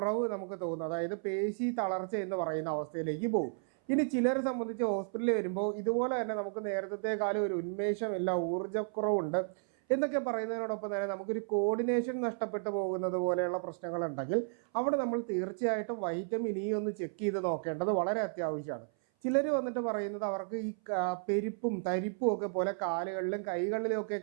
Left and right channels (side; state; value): left; silent; 56 dB below the other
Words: നമുക്ക് തോന്നും. അതായത് പേശി തളർച്ച എന്ന് പറയുന്ന അവസ്ഥയിലേക്ക് പോകും. ഇനി ചിലരെ സംബന്ധിച്ച് ഹോസ്പിറ്റലിൽ വരുമ്പോൾ ഇതുപോലെ തന്നെ നമുക്ക് നേരത്തെക്കാലം ഒരു ഉന്മേഷമില്ല, ഊർജ്ജക്കുറവുണ്ട് എന്നൊക്കെ പറയുന്നതിനോടൊപ്പം തന്നെ നമുക്കൊരു കോർഡിനേഷൻ നഷ്ടപ്പെട്ടു പോകുന്നത് പോലെയുള്ള പ്രശ്നങ്ങളുണ്ടെങ്കിൽ അവിടെ നമ്മൾ തീർച്ചയായിട്ടും വൈറ്റമിൻ ഇ ഒന്ന് ചെക്ക് ചെയ്ത് നോക്കേണ്ടത് വളരെ അത്യാവശ്യമാണ്. ചിലർ വന്നിട്ട് പറയുന്നത് അവർക്ക് ഈ പെരുപ്പും തരിപ്പും ഒക്കെ പോലെ കാലുകളിലും കൈകളിലും ഒക്കെ